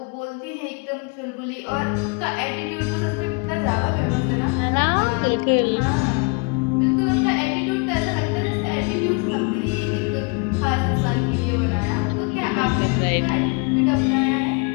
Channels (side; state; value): right; quieter; 32.9 dB